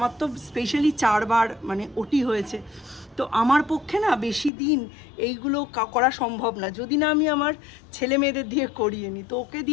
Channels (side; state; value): right; drops out; at 4.5 s